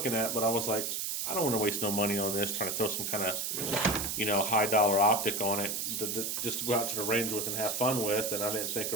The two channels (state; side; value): noise; right; hiss, 2 dB below the sound